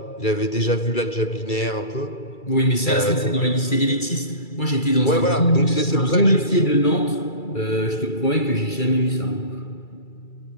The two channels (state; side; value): late; right; 2.3 ms